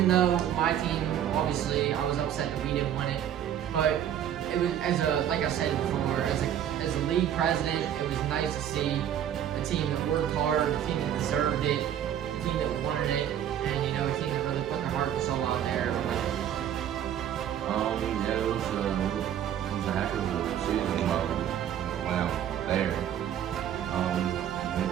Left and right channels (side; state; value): left; quieter; 10.2 dB